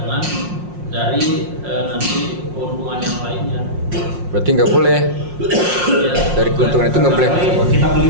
dari nanti keuntungan yang lainnya. Berarti nggak boleh Ya, dari keuntungan itu nggak boleh. Kita beli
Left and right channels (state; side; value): late; left; 5.6 ms